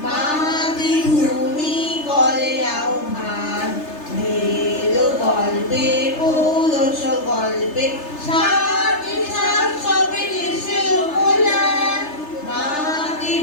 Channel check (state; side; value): late; right; 3.3 ms